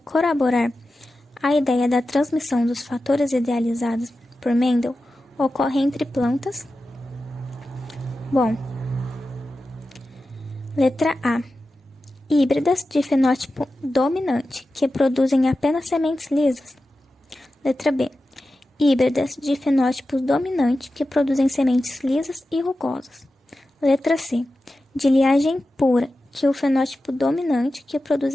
a ideia da transmissão dos fatores idealizados por Mendel, ocorre entre plantas. Letra A. Híbridas de fenótipo dominante, que produzem apenas sementes lisas. Letra B. Híbridas de fenótipo dominante, que produzem sementes lisas e rugosas. Letra C. De linhagem pura, que o fenótipo dominante, que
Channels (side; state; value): both; normal; correlation 0.93